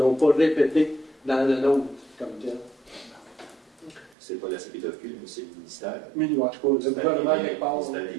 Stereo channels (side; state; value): left; drops out; at 4.2 s